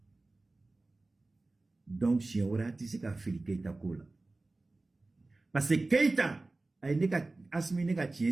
Donc, si on a dit que Fili Keïta Kola. Parce que Keïta, Assimi neka tient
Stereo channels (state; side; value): quieter; left; 3.2 dB